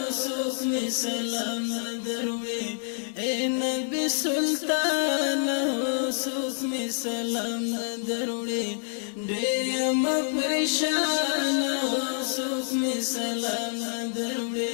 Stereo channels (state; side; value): silent; right; 60 dB below the other